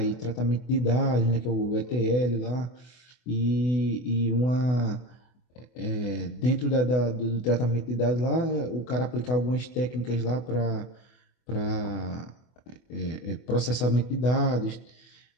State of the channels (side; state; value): right; late; 24 ms